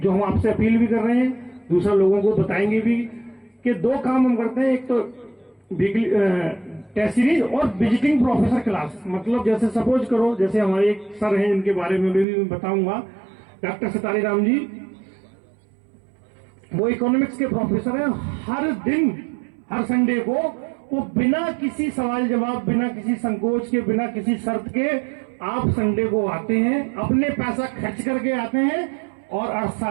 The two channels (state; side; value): drops out; left; at 12.2 s